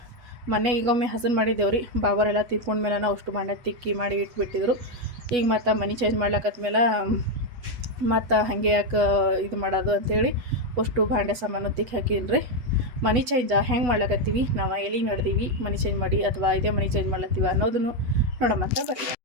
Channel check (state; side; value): late; left; 8.2 ms